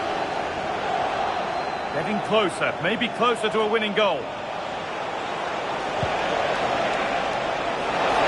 Getting closer, maybe closer to a winning goal. To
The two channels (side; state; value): both; identical; correlation 1.00